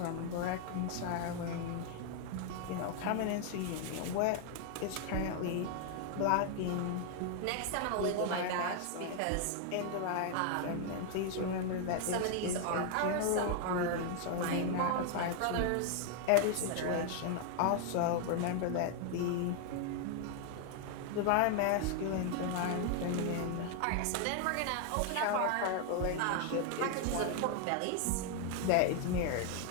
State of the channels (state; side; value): different; both; correlation 0.00